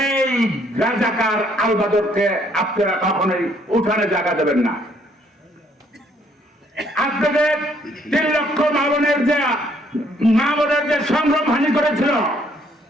রাজাকার আলবাদরকে আপনারা কখনোই উঠানে জায়গা দেবেন না। আপনাদের 3 লক্ষ মা বোনের যে সংগ্রাম হানি করেছিল,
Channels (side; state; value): both; normal; correlation 0.66